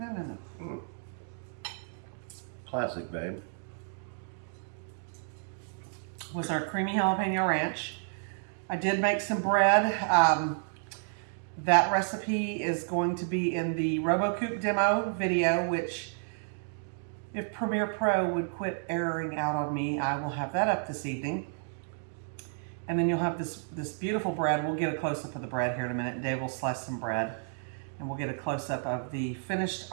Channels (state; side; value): silent; left; digital silence